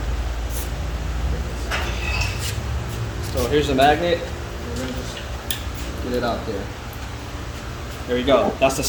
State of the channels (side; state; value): both; identical; correlation 1.00